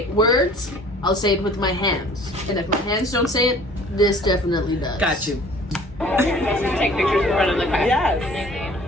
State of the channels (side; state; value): both; normal; correlation 0.50